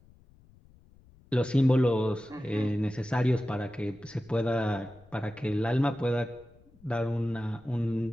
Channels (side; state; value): left; noise; rumble, 27 dB below the sound